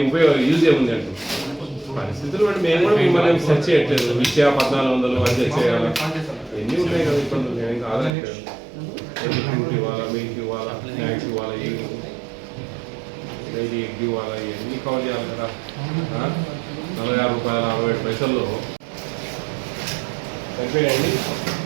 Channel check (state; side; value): drops out; left; at 8.1 s